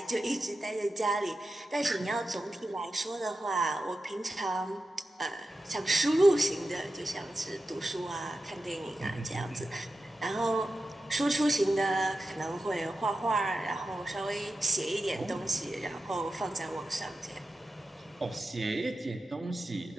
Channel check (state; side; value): normal; both; correlation 0.91